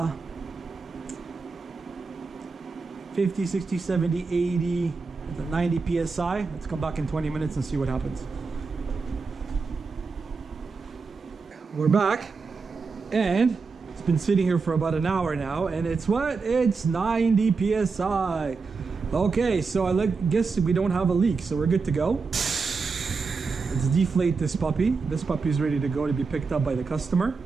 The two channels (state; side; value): quieter; left; 4.6 dB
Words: 50, 60, 70, 80, 90 psi. Let's come back in 20 minutes and see what happens. We're back, and it's been sitting here for about an hour now, and it's what? It's 90 psi. Okay, so I guess we don't have a leak, so we're good to go. Let's deflate this puppy. This puppy is ready to go to be picked up by the customer.